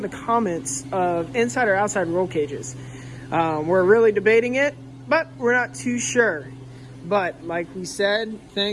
the comments of inside or outside roll cages. We're really debating it, but we're not too sure. But like we said,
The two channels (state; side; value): identical; both; correlation 1.00